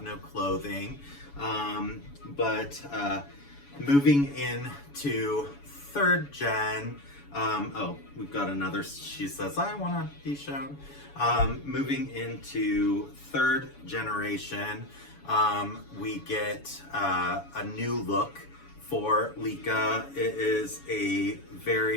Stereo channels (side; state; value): right; late; 7.0 ms